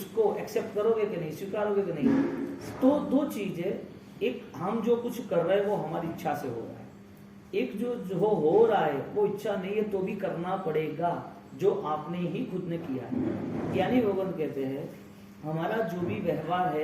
एक्सेप्ट करोगे कि नहीं, स्वीकारोगे कि नहीं? तो दो चीजें, एक हम जो कुछ कर रहे हैं वो हमारी इच्छा से हो रहा है, एक जो हो रहा है वो इच्छा नहीं है तो भी करना पड़ेगा, जो आपने ही खुद ने किया है। यानी भगवान कहते हैं हमारा जो भी व्यवहार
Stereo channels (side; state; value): both; identical; correlation 1.00